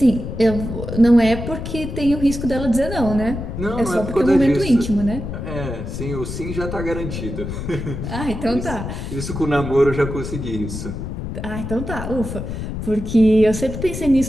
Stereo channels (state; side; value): noise; left; rumble, 6 dB below the sound